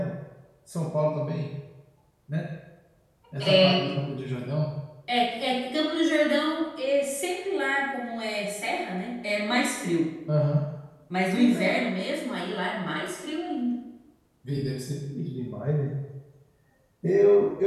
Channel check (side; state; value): both; identical; correlation 1.00